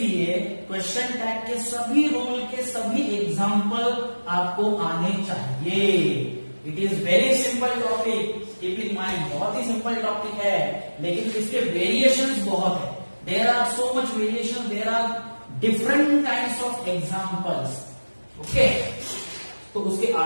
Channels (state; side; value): inverted; both; correlation -1.00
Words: क्वेश्चन टैग के सभी रूल के सभी एग्जांपल आपको आने चाहिए। It is very simple topic, keep in mind, बहुत ही सिंपल टॉपिक है, लेकिन इसके वेरिएशंस बहुत है. There are so much variation, there are different kinds of examples. Okay, तो उसके